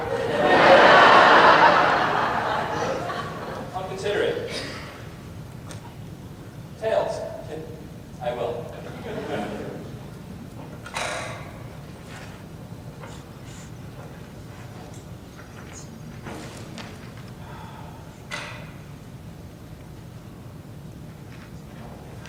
I'll consider it. Tails. I will.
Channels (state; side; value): identical; both; correlation 1.00